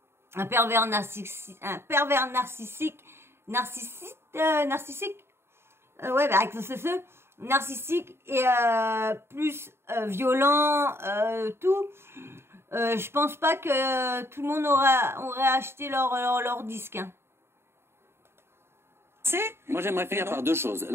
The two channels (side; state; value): left; late; 0.12 ms